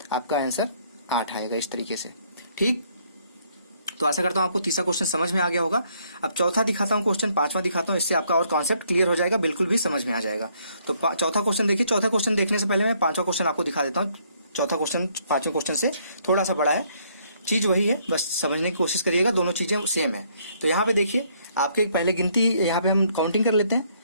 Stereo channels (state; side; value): inverted; both; correlation -0.67